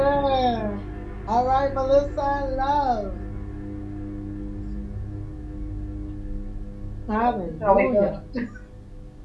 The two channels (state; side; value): identical; both; correlation 1.00